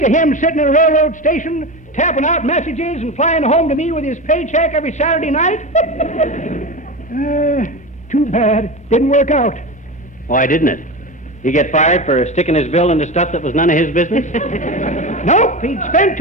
of him sitting in a railroad station, tapping out messages and flying home to me with his paycheck every Saturday night. Too bad. Didn't work out. Why didn't it? He get fired for sticking his bill into stuff that was none of his business? Nope, he'd spent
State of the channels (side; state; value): both; normal; correlation 0.24